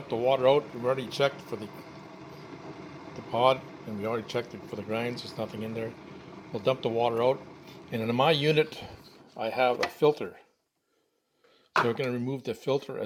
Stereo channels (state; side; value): identical; both; correlation 1.00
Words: the water out. We've already checked for the pod, and we already checked it for the grinds. There's nothing in there. We'll dump the water out. And in my unit, I have a filter. So we're going to remove the filter